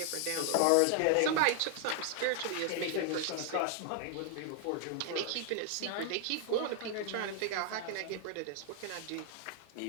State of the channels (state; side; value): different; both; correlation 0.00